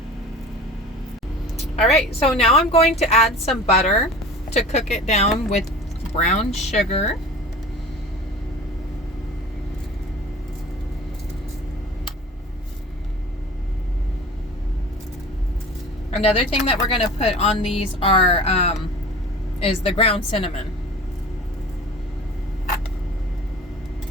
Alright, so now I'm going to add some butter to cook it down with brown sugar. Another thing that we're going to put on these is the ground cinnamon.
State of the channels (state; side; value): normal; both; correlation 0.39